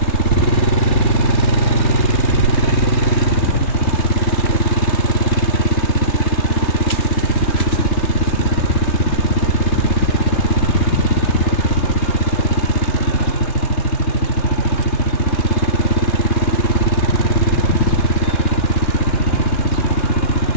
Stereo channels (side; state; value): right; late; 3.4 ms